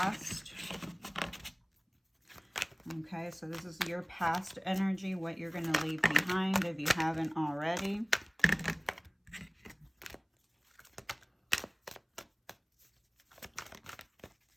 Okay, so this is your past energy, what you're going to leave behind if you haven't already.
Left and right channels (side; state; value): both; identical; correlation 1.00